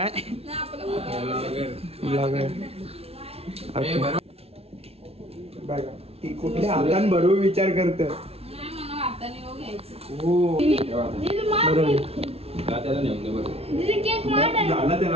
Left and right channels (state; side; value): late; left; 0.29 ms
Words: ब्लॉगर ती कुठल्या हातान भरू विचार करत. हो झाला